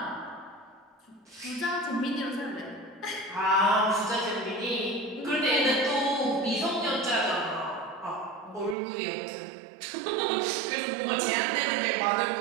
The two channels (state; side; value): drops out; left; at 8.8 s